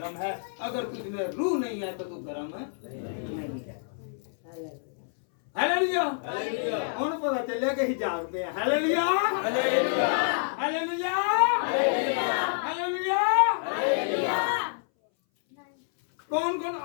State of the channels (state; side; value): silent; right; 59 dB below the other